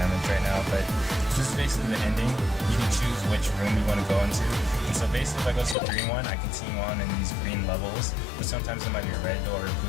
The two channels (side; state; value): right; drops out; at 5.8 s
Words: right now, but this is basically the ending. You can choose which room you want to go into. And so basically if I go to the green one, I continue on in these green levels, but sometimes it might be a red door, a